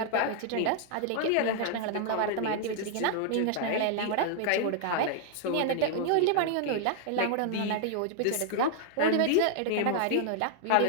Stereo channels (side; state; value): both; different; correlation 0.00